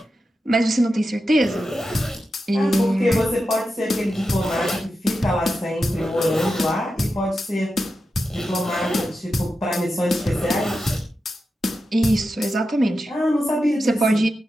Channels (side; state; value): both; normal; correlation 0.90